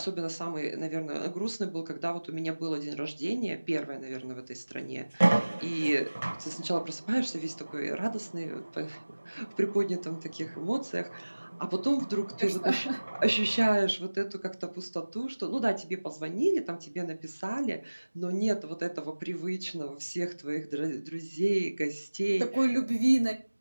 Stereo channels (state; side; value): inverted; both; correlation -1.00